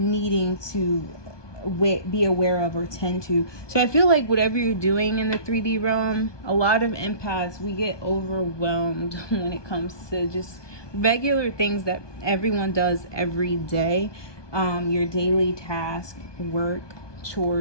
to be aware of or tend to. So I feel like whatever you're doing in the 3D realm, a lot of empaths, we get overwhelmed when it comes to just regular things that everyone does every day. Your daily task, work,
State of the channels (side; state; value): right; late; 1.2 ms